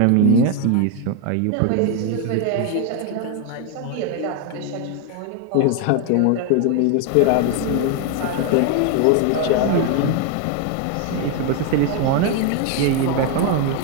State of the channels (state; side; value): different; both; correlation 0.01